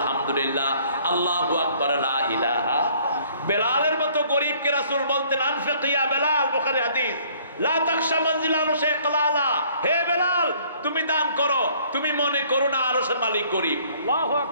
আল্লাহু আকবার, লা ইলাহা। বেলালের মতো গরীবকে রাসূল বলতেন, আনফিক ইয়া বেলাল, বুখারী হাদিস, লা তাখশা মানজিলানু শাইকালালা, হে বেলাল তুমি দান করো, তুমি মনে করো না আরশের মালিক গরীব। আল্লাহু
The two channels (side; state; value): both; inverted; correlation -0.59